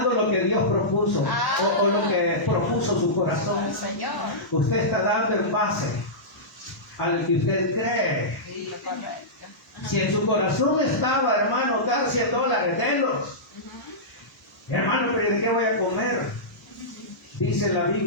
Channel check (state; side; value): normal; both; correlation -0.15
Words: lo que Dios propuso o lo que propuso su corazón. Señor. Usted está dando en base a lo que usted cree. Sí, correcto. Si en su corazón estaba, hermano, dar $100, denlos. Hermano, pero ¿de qué voy a comer? Dice la